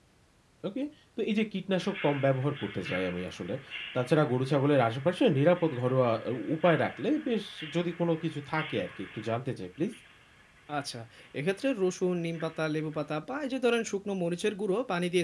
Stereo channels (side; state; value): both; identical; correlation 1.00